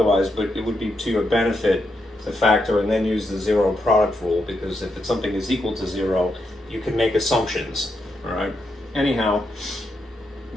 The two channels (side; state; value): both; normal; correlation 0.83